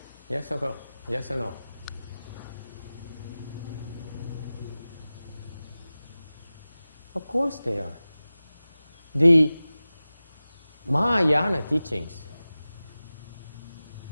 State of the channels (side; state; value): both; inverted; correlation -0.96